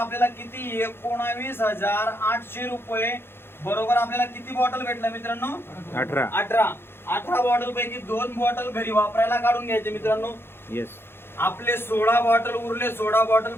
किती? 19,800 रुपये. बरोबर आपल्याला किती बॉटल भेटल्या मित्रांनो? 18 बॉटल पैकी 2 बॉटल घरी वापरायला काढून घ्यायचे मित्रांनो. येस. आपले 16 बॉटल उरले. 16 बॉटल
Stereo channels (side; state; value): right; late; 0.11 ms